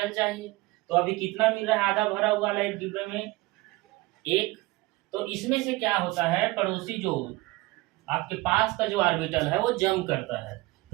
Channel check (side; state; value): left; quieter; 21.6 dB